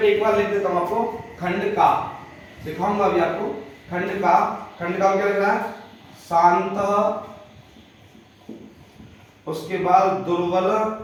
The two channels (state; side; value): identical; both; correlation 1.00